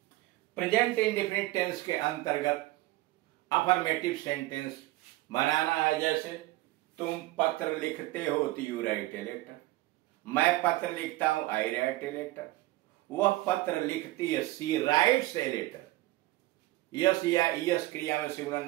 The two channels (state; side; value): quieter; left; 18.2 dB